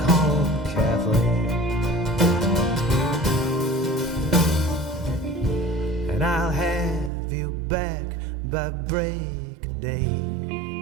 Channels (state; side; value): drops out; left; at 7.1 s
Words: Kathleen. And I'll have you back by break of day.